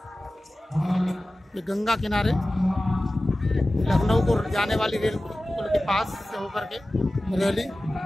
ये गंगा किनारे लखनऊ को जाने वाली रेल पुल के पास से होकर के रैली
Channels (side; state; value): both; normal; correlation 0.96